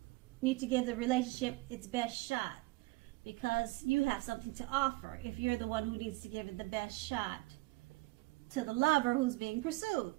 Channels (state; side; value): quieter; left; 22.1 dB